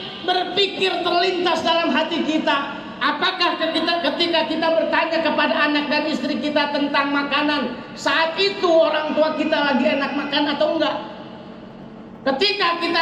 berpikir terlintas dalam hati kita, apakah ketika kita bertanya kepada anak dan istri kita tentang makanan, saat itu orang tua kita lagi enak makan atau enggak? Ketika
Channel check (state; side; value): identical; both; correlation 1.00